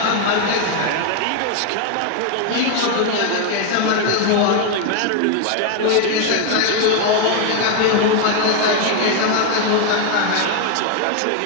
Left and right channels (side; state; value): both; different; correlation 0.01